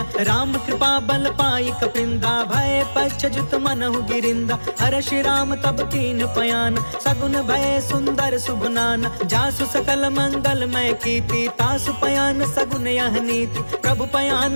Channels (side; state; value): both; inverted; correlation -1.00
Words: राम कृपा बल पाई कपिंदा, भय पश्चजुत मनहु गिरिंदा। हर्षि राम तब कीन पयान, सगुन भय सुंदर शुभनान। जासु सकल मंगलमय कीर्ति, तासु पयान सगुन यह नीति। प्रभु